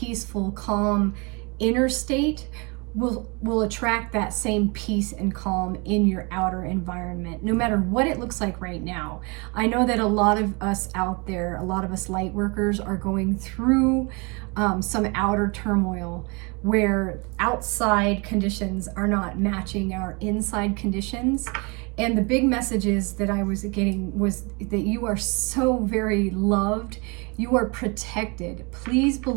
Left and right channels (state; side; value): quieter; left; 30.1 dB